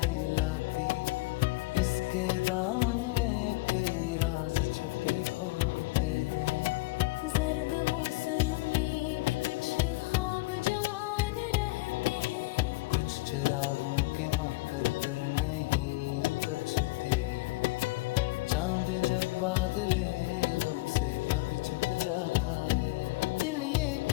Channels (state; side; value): quieter; right; 22.2 dB